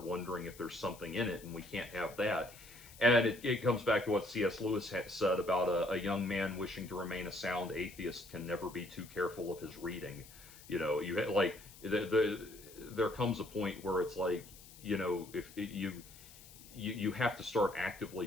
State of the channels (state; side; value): noise; left; hiss, 19 dB below the sound